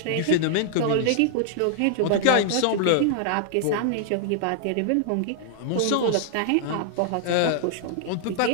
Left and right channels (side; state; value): both; different; correlation 0.00